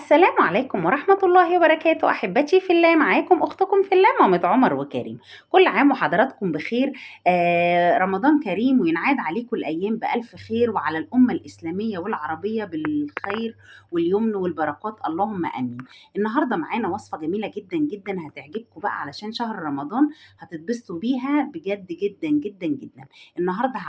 عليكم ورحمة الله وبركاته. أحبتي في الله، معاكم أختكم في الله مامة عمر وكريم. كل عام وحضراتكم بخير. رمضان كريم وينعاد عليكم الأيام بألف خير، وعلى الأمة الإسلامية والعربية بالخير واليمن والبركات، اللهم آمين. النهاردة معانا وصفة جميلة جدا جدا هتعجبكم بقى، علشان شهر رمضان هتتبسطوا بيها بجد جدا جدا جدا. النهاردة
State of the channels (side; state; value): both; identical; correlation 1.00